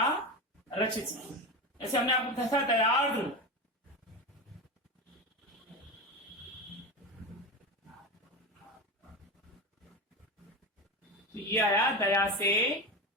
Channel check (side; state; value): both; normal; correlation 0.21